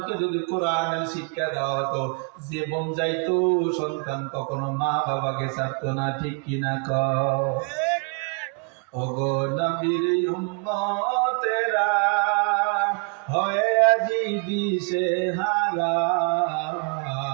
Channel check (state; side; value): quieter; left; 38.4 dB